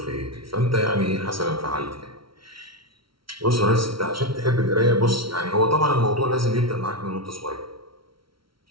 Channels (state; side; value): late; left; 0.74 ms